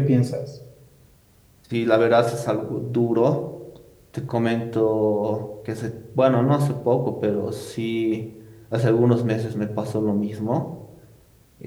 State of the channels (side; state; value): both; identical; correlation 1.00